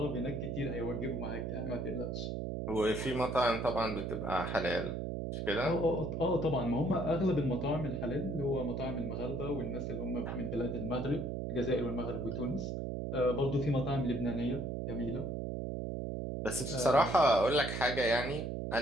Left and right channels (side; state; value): right; noise; hum, 3 dB below the sound